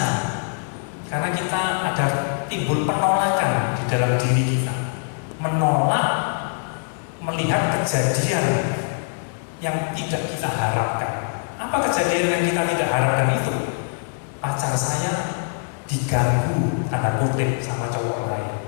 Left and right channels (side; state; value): right; silent; digital silence